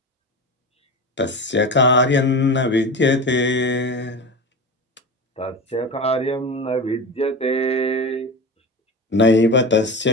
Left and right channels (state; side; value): normal; both; correlation 0.26